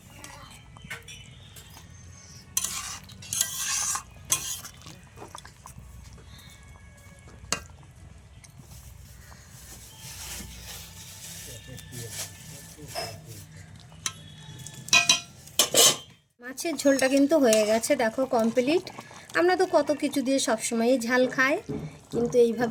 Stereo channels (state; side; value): identical; both; correlation 1.00